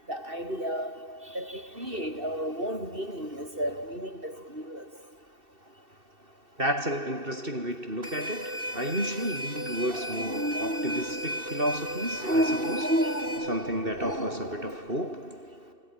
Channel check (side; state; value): left; late; 2.7 ms